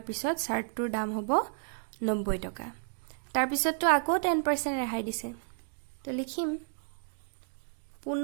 পিছত চাৰ্টৰ দাম হ'ব 90 টকা তাৰ পিছত তো আকৌ 10% ৰেহাই দিছে তো লিখিম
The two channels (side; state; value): left; silent; digital silence